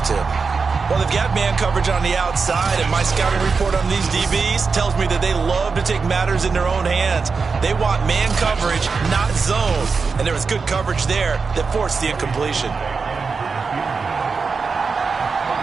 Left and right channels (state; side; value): quieter; left; 4.9 dB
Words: to. Well, they've got man coverage on the outside, and my scouting report on these DBs tells me that they love to take matters in their own hands. They want man coverage, not zone. And there was good coverage there that forced the incompletion.